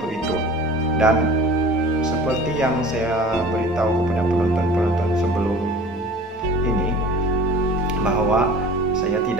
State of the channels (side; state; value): both; normal; correlation 0.43